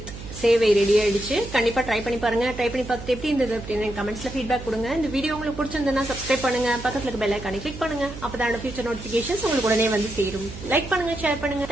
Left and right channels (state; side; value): noise; right; hum, 12 dB below the sound